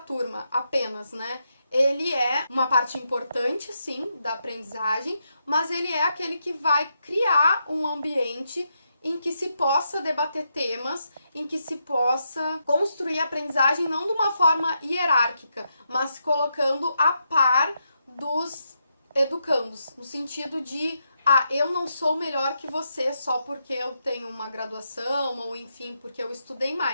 apenas, né? Ele é uma parte importante, sim, da aprendizagem, mas ele é aquele que vai criar um ambiente em que se possa debater temas, em que se possa construir a aprendizagem não de uma forma hierárquica, mas colocando a par dos educandos, no sentido de, eu não sou melhor que você só porque eu tenho uma graduação, ou enfim, porque eu estudei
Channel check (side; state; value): both; inverted; correlation -0.82